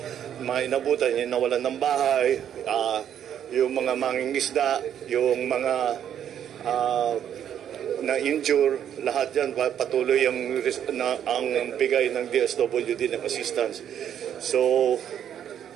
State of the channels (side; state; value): left; quieter; 9.6 dB